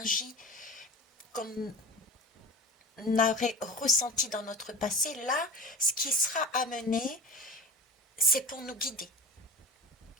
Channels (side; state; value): both; normal; correlation 0.33